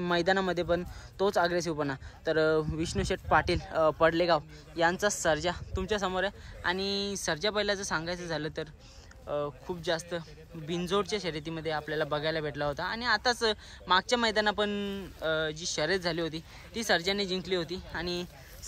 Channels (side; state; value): both; identical; correlation 1.00